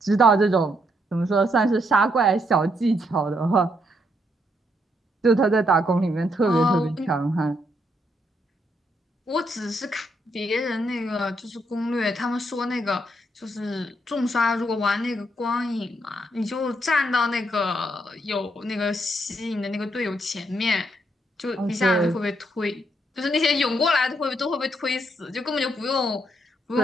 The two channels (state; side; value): normal; both; correlation 0.76